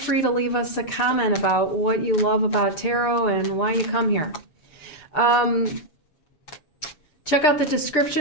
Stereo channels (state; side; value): late; right; 6.8 ms